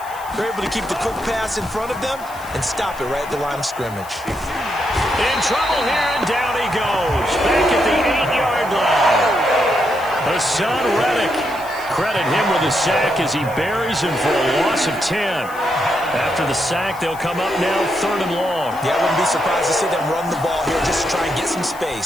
You're able to keep the quick pass in front of them and stop it right at the line of scrimmage. In trouble here, and down he goes. Back at the 8-yard line. Hassan Reddick. Credit him with a sack as he buries him for a loss of 10. After the sack, they'll come up now 3rd and long. Yeah, I wouldn't be surprised to see them run the ball here just to try and get some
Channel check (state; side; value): noise; left; hiss, 19 dB below the sound